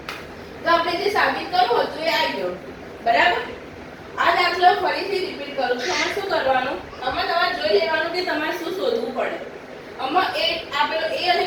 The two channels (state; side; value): identical; both; correlation 1.00